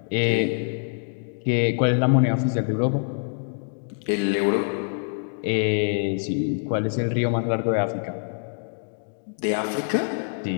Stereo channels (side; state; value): right; silent; digital silence